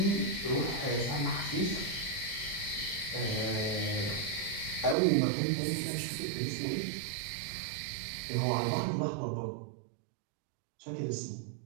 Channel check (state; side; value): drops out; left; at 5.0 s